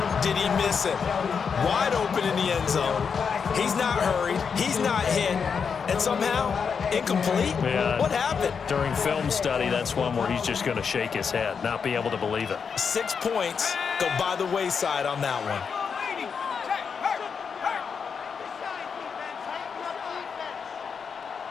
did he miss it? Wide open in the end zone. He's not hurried. He's not hit. And somehow, incomplete? Yeah. What happened? During film study, that's one where he's just going to shake his head, not be able to believe it. 6 points go by the wayside on that one.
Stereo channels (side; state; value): right; quieter; 6.2 dB